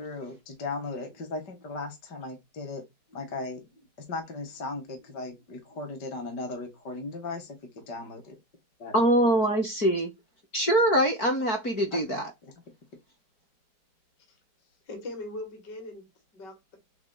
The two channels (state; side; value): late; right; 4.5 ms